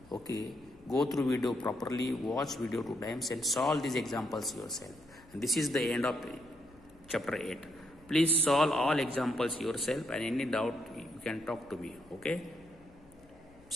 okay, go through video properly, watch video 2 times and solve these examples yourself. And this is the end of chapter 8. Please solve all examples yourself, and any doubt you can talk to me. Okay,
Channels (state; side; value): noise; left; hum, 27 dB below the sound